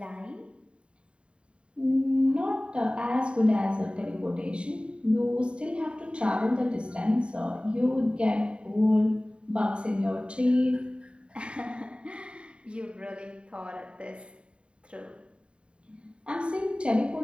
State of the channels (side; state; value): left; late; 0.055 ms